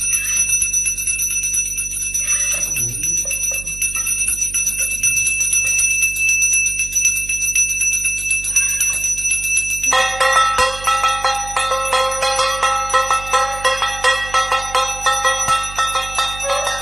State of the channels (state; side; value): noise; right; hum, 14 dB below the sound